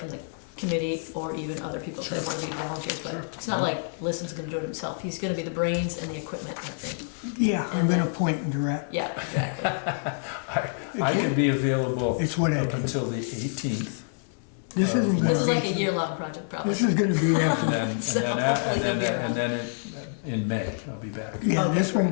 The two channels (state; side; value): silent; right; digital silence